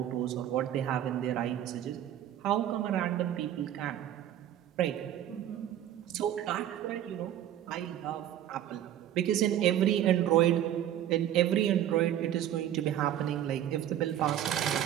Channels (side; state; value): left; quieter; 11.3 dB